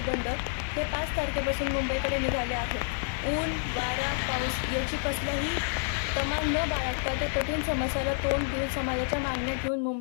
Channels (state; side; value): silent; right; digital silence